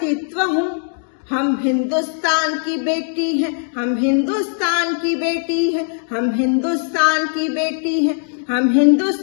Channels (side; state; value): right; silent; digital silence